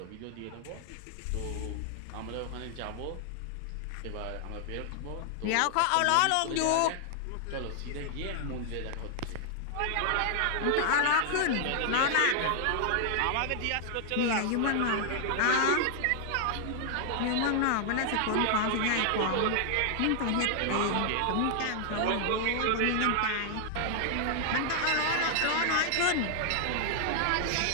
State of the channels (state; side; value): different; both; correlation 0.00